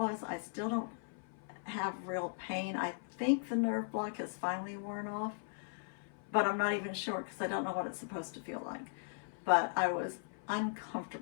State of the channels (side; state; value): right; silent; 52 dB below the other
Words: I still don't have real pain. I think the nerve block has finally worn off, but I'm not even sure because I don't know what it's supposed to feel like. But I was